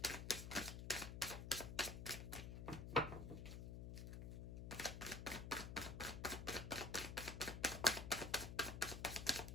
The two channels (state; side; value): noise; left; hum, 6 dB below the sound